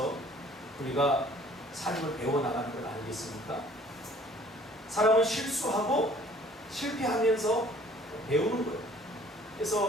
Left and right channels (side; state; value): both; normal; correlation 0.54